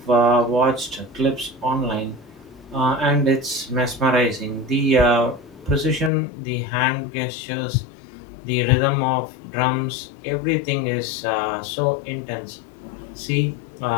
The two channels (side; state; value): right; drops out; at 6.1 s